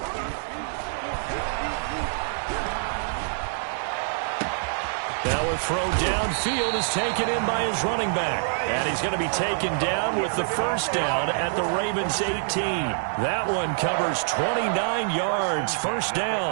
Now a throw downfield is taken in by his running back. And he's going to be taken down with the first down at the Ravens 18. That one covers 29 yards. First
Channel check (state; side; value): silent; left; digital silence